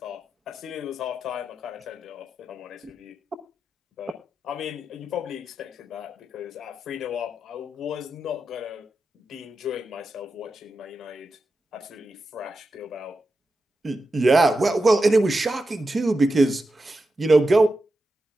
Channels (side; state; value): both; normal; correlation 0.89